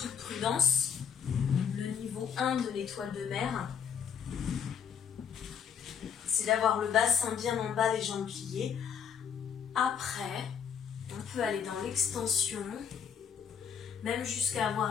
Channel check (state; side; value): quieter; right; 7.4 dB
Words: prudence, le niveau 1 de l'étoile de mer, c'est d'avoir le bassin bien en bas, les jambes pliées. Après, on peut aller dans l'extension, même jusqu'à